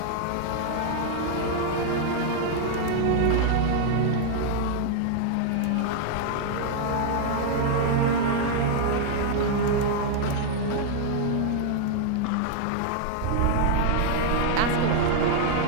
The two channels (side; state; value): both; different; correlation 0.00